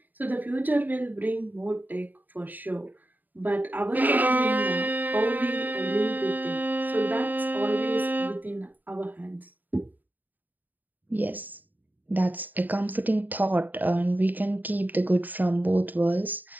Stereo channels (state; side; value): late; left; 0.086 ms